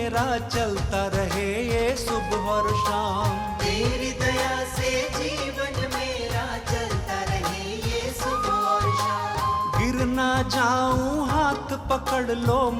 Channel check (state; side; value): identical; both; correlation 1.00